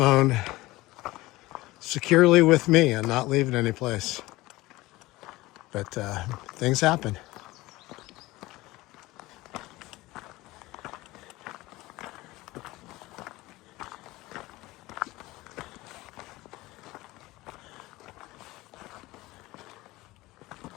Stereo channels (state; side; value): quieter; right; 19.4 dB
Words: securely with me and not leave it anyplace. But things happen.